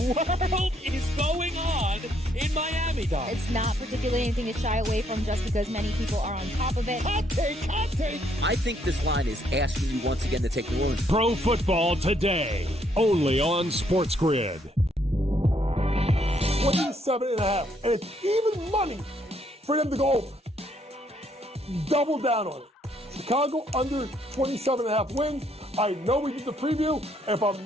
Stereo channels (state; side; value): normal; both; correlation 0.70